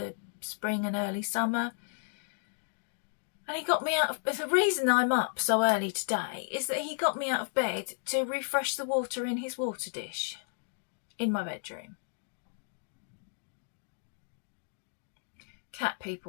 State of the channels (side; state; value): right; silent; digital silence